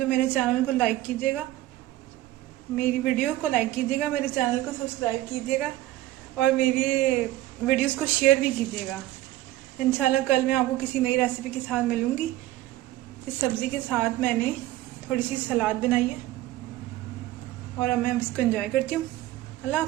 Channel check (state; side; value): quieter; left; 15.8 dB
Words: मेरे चैनल को लाइक कीजिएगा, मेरी वीडियो को लाइक कीजिएगा, मेरे चैनल को सब्सक्राइब कीजिएगा और मेरी वीडियोस को शेयर भी कीजिएगा। इंशाल्लाह कल मैं आपको किसी नई रेसिपी के साथ मिलूँगी। इस सब्ज़ी के साथ मैंने थोड़ी सी सलाद बनाई है और अब मैं इसको एंजॉय करती हूँ। अल्लाह